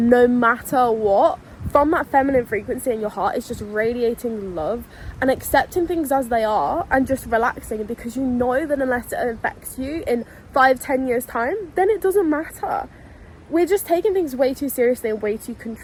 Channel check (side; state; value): both; identical; correlation 1.00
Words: matter what, from that feminine frequency in your heart, is just radiating love and accepting things as they are and just relaxing, because you know that unless it affects you in 5-10 years time, then it doesn't matter. We're just taking things way too seriously and way too